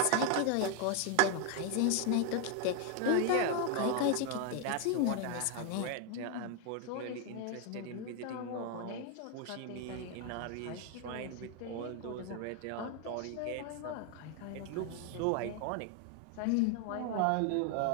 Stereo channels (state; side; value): different; both; correlation 0.01